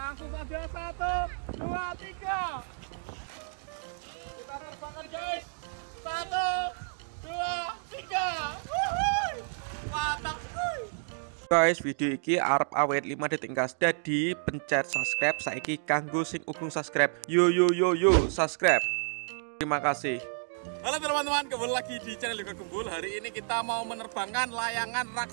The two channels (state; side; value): silent; left; digital silence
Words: saja 1, 2, 3. Kita terbangkan guys. 1, 2, 3. Wuhui. Mantap. Guys, video iki arep awet 5 detik gas. Dadi pencet subscribe saiki kanggo sing urung subscribe. Yo subscribe. Terima kasih. Halo teman-teman, kembali lagi di channel Liga Gembul. Hari ini kita mau menerbangkan layangan